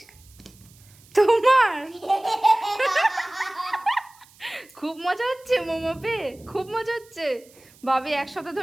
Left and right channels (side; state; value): right; noise; hiss, 27 dB below the sound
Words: তোমার? খুব মজা হচ্ছে মোমো পেয়ে, খুব মজা হচ্ছে। ভাবি এক সপ্তাহ